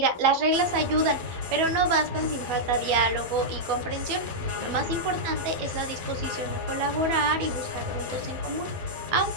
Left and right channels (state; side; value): late; left; 12 ms